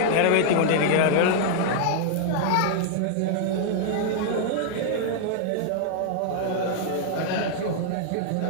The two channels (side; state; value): both; different; correlation -0.01